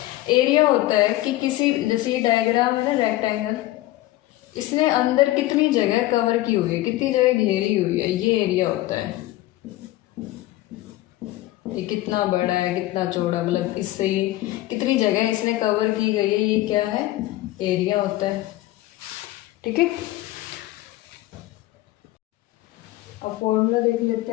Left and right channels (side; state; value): right; quieter; 16.8 dB